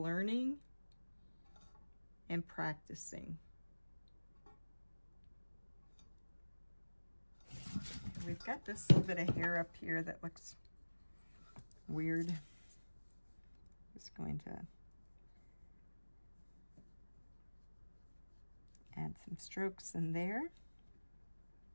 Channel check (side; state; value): both; inverted; correlation -1.00